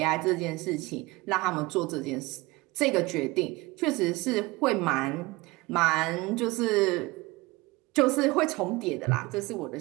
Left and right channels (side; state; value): left; quieter; 22.3 dB